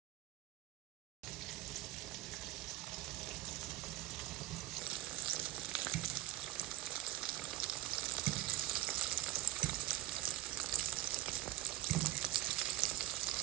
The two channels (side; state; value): left; quieter; 16.8 dB